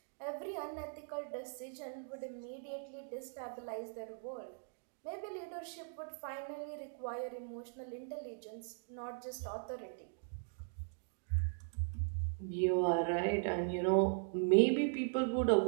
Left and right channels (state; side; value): silent; left; digital silence